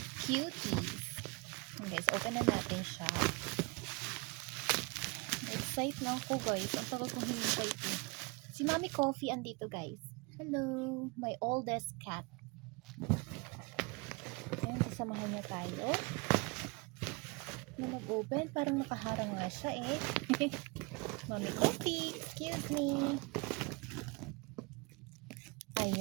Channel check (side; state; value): left; quieter; 28.3 dB